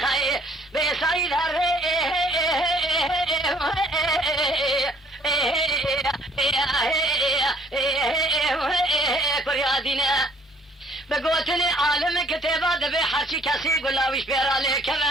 بيسايد هري كريادينا بقوتني عالم كتابة دبي حرشي كسي قلاويش بيرالي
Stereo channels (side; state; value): both; normal; correlation 0.60